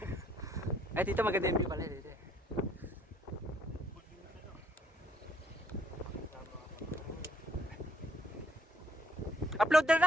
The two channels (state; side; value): normal; both; correlation 0.68